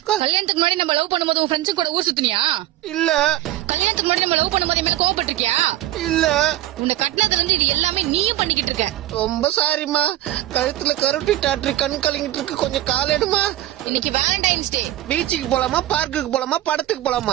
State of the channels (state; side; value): quieter; left; 14.7 dB